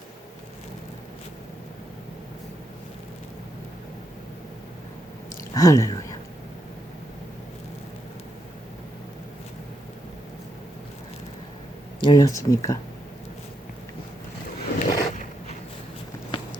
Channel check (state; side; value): normal; both; correlation 0.81